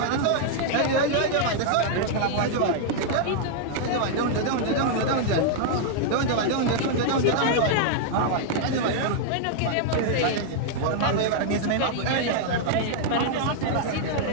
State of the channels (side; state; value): both; different; correlation -0.01